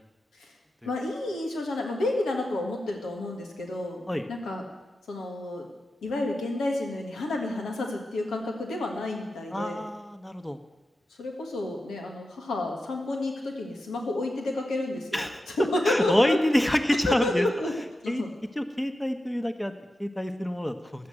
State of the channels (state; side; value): normal; both; correlation 0.90